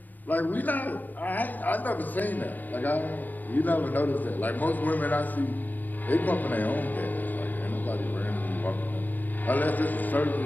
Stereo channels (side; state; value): right; late; 0.088 ms